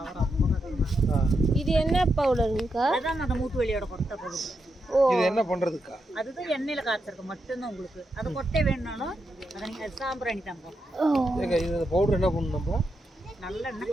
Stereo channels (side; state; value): both; normal; correlation 0.84